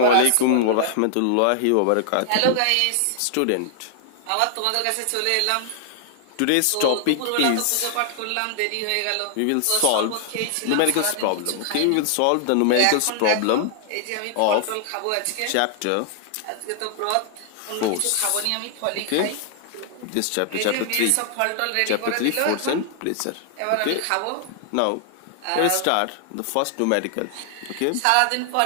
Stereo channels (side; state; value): both; different; correlation 0.00